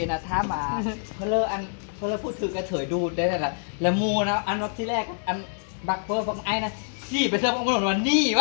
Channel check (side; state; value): right; silent; 61 dB below the other